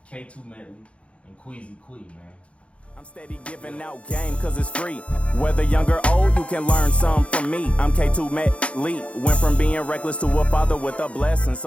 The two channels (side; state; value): right; late; 0.062 ms